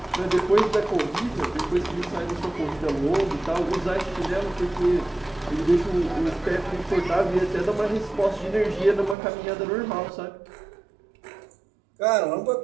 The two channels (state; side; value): drops out; left; at 9.2 s